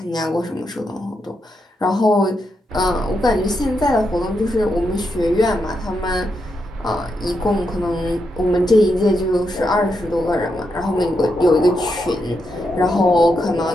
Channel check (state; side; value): normal; both; correlation 0.83